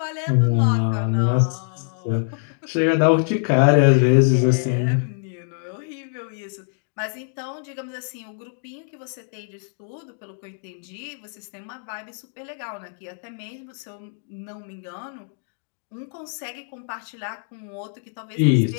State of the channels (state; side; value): silent; right; digital silence